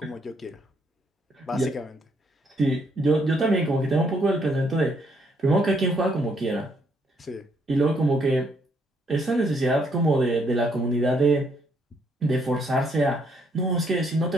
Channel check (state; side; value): normal; both; correlation 0.71